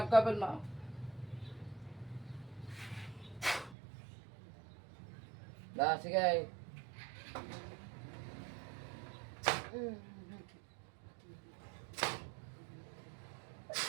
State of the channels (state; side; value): drops out; left; at 3.8 s